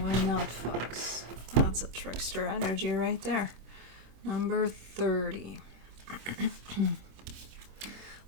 not fox? That's a trickster energy right there. Number 30.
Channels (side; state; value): left; late; 26 ms